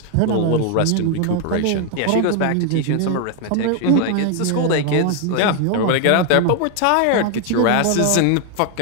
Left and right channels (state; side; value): different; both; correlation 0.00